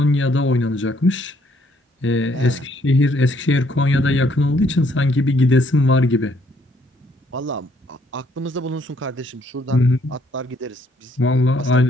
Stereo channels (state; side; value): normal; both; correlation 0.67